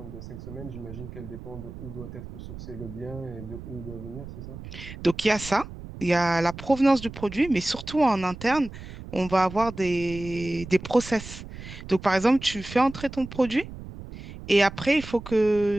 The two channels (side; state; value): right; noise; rumble, 12 dB below the sound